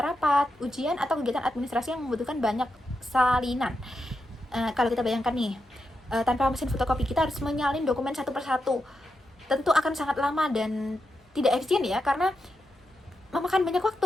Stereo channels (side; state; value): both; normal; correlation 0.86